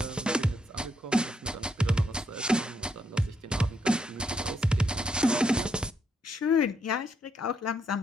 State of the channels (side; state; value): both; normal; correlation 0.76